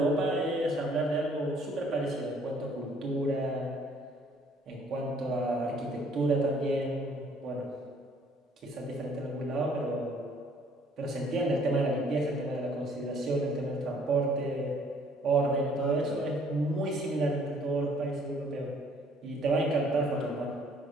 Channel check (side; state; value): both; normal; correlation 0.60